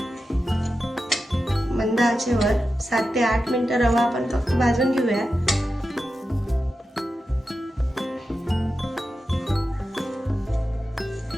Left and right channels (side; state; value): both; normal; correlation 0.91